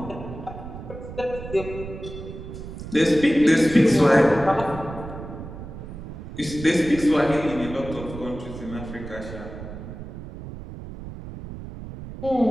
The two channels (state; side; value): noise; right; rumble, 11 dB below the sound